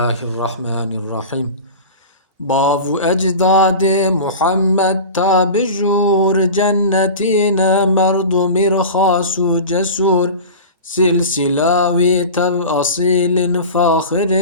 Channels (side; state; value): both; inverted; correlation -0.33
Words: الرحمن الرحيم باو أجداد محمد تابجور جنتين مرد مرخاص جسور سلسلاوي تب أصيل فاخر